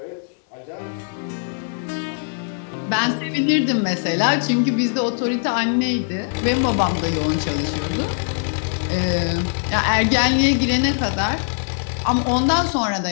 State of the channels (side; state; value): right; silent; digital silence